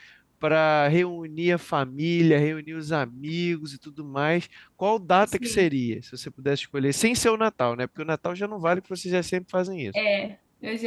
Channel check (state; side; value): identical; both; correlation 1.00